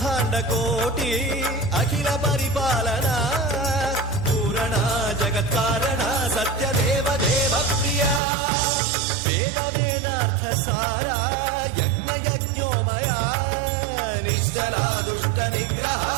कोटि अखिल परिपालना पूरणा जगत्कारणा सत्यदेव देव प्रिया वेद वेदार्थ सारा यज्ञ यज्ञोमया निश्चला दुष्ट निग्रह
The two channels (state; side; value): drops out; left; at 8.2 s